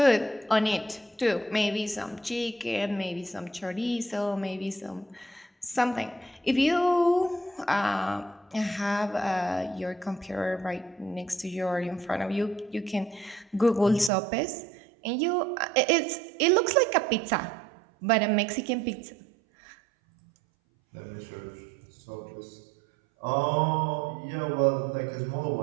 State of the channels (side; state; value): left; drops out; at 14.1 s